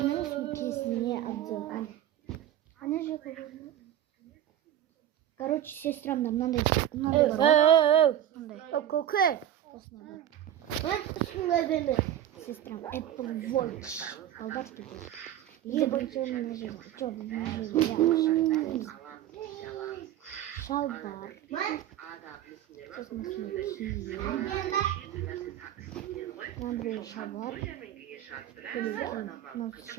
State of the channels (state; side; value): quieter; left; 11.5 dB